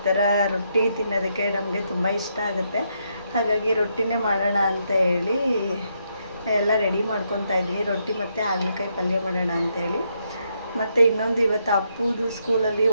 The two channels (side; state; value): both; inverted; correlation -0.78